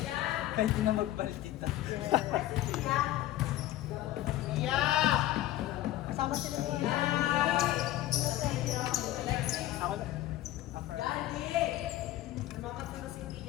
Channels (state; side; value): quieter; right; 14.7 dB